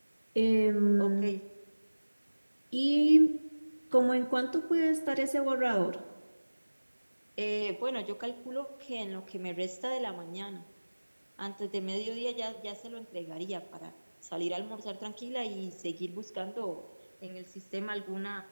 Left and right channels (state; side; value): inverted; both; correlation -1.00